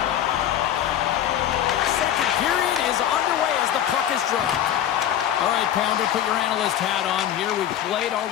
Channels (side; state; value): right; quieter; 10.8 dB